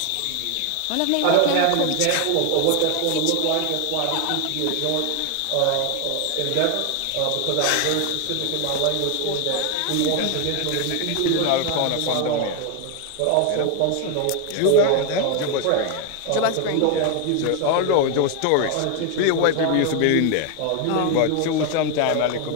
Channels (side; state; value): both; different; correlation 0.01